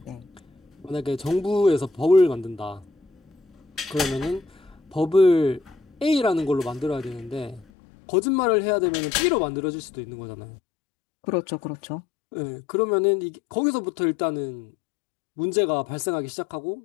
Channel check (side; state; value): right; drops out; at 7.7 s